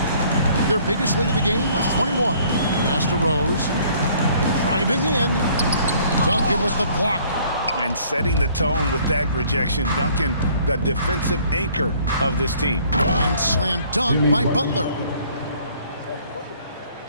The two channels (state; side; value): inverted; both; correlation -0.59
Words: Their biggest lead of the game was 21. Pass to Rose. Driving in. Duncan with the block. And setting the tone with that rejection. Duncan, the defensive anchor of this team. And slam dunk by Butler.